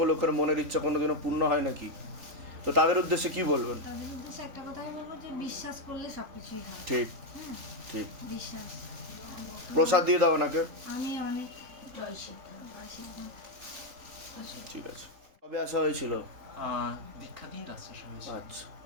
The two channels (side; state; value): left; late; 3.4 ms